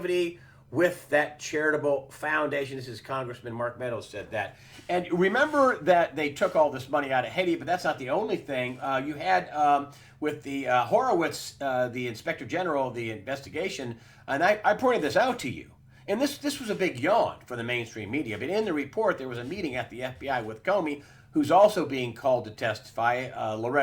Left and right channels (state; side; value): identical; both; correlation 1.00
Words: with that charitable foundation. This is Congressman Mark Meadows said that. And remember that they took all this money out of Haiti, but that's not the only thing. You had with the Horowitz, the Inspector General of the investigation, and I pointed this out to you. And this was a big yawn for the mainstream media. But in the report, there was a meeting at the FBI with Comey, who's also being called to testify.